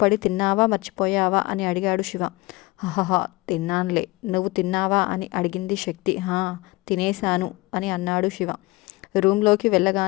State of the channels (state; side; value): quieter; right; 22.3 dB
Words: పడి తిన్నావా మర్చిపోయావా అని అడిగాడు శివ. హహహా, తిన్నానులే, నువ్వు తిన్నావా అని అడిగింది శక్తి. తినేశాను అని అన్నాడు శివ. రూమ్లోకి